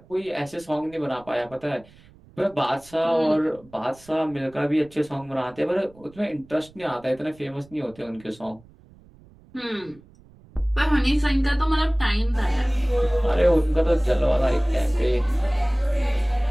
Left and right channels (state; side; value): noise; right; rumble, 26 dB below the sound